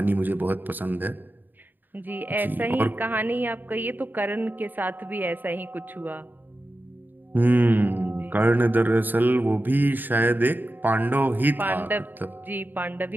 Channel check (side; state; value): left; late; 0.090 ms